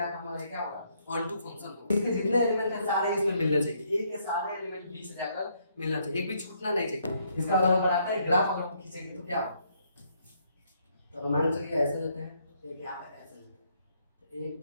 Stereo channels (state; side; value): inverted; both; correlation -0.71